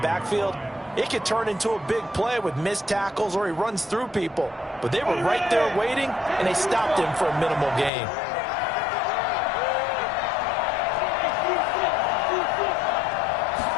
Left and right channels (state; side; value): drops out; right; at 7.9 s